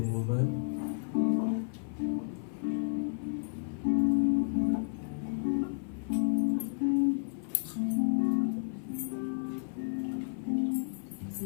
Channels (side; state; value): right; silent; 56 dB below the other